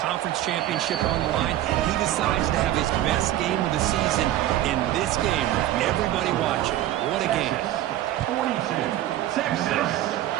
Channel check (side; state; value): left; quieter; 13.5 dB